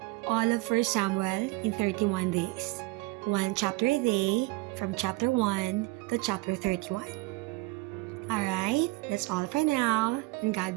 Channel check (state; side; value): quieter; left; 23.1 dB